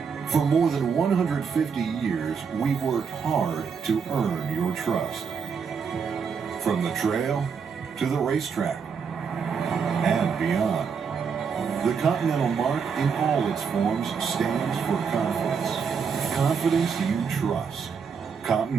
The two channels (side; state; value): left; quieter; 6.2 dB